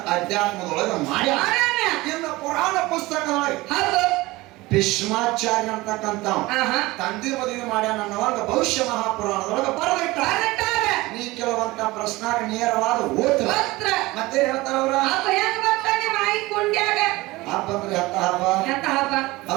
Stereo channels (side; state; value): left; quieter; 20.4 dB